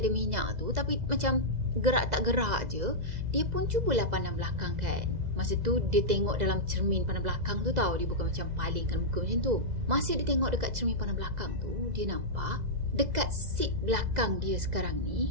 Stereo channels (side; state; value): left; late; 2.0 ms